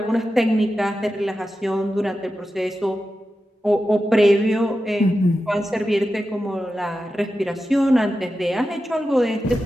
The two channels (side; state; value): both; normal; correlation 0.91